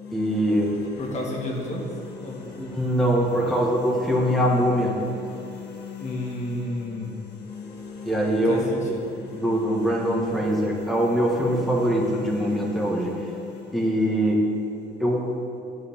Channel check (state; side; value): normal; both; correlation 0.65